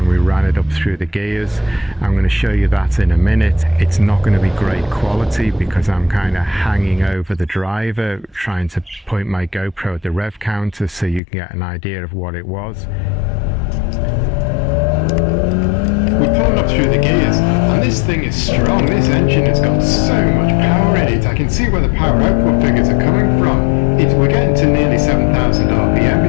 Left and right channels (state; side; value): drops out; right; at 11.2 s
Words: we ran it up through the gears. I'm going to show you that in a minute. It's not going to be great quality because I'm kind of hanging over the driver, trying to point my GoPro at the rev counter so you can get an idea of what it was. We're pulling up through the gears, and this thing is strong. This engine has got so much power in it. I can see where the power output figures are coming from. We're getting to nearly 7,000 RPM